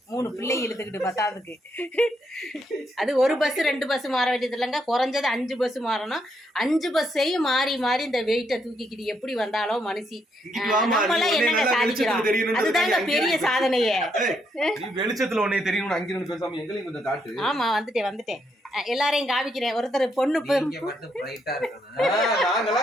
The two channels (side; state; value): both; normal; correlation 0.76